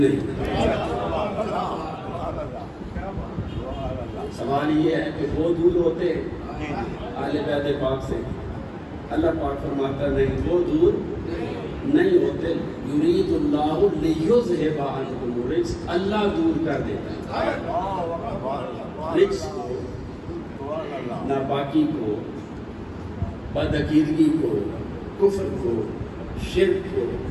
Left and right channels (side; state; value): both; identical; correlation 1.00